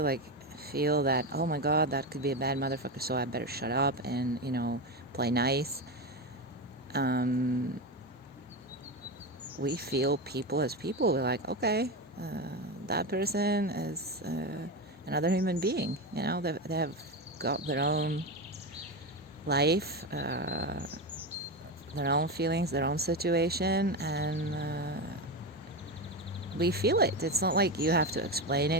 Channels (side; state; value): both; normal; correlation 0.17